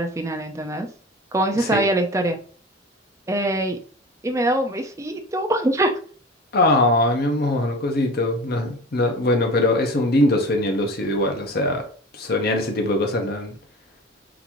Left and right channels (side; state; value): both; normal; correlation 0.35